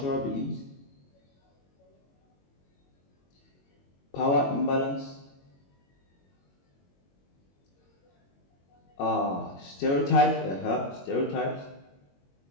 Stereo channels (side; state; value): right; late; 22 ms